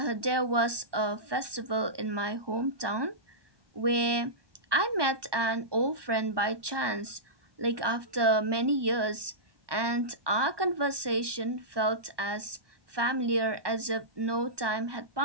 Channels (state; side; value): late; left; 1.2 ms